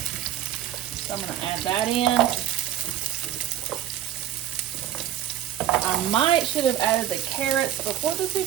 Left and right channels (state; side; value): quieter; left; 11.6 dB